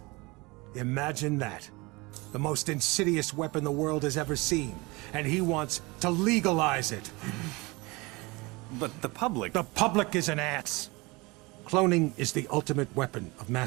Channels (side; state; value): left; quieter; 24.6 dB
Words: Imagine that. The most insidious weapon the world has ever seen, and he wants to legalize it. But the public... The public is an ass. Cloning is the ultimate weapon of